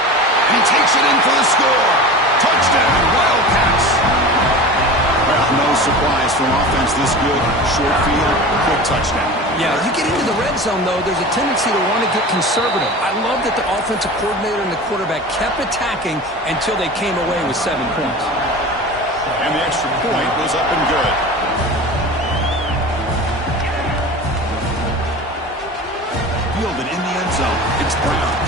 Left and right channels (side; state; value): both; normal; correlation 0.34